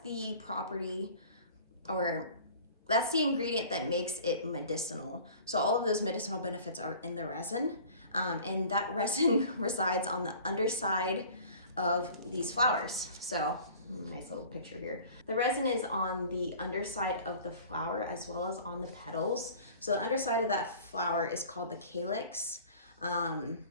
the property, or that's the ingredient that makes it medicinal. So all of those medicinal benefits are in the resin, and that resin resides on the underside of these flowers. So nice little picture here. The resin is on the underside of the flower as well as on the petals. So the underside of that flower is called the calyx, and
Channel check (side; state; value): both; inverted; correlation -0.46